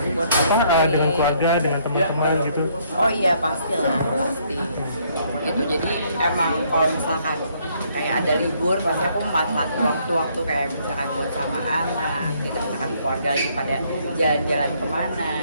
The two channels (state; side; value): inverted; both; correlation -0.68